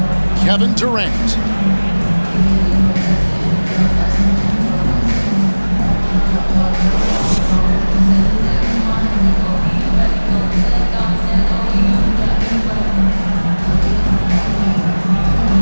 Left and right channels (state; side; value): inverted; both; correlation -1.00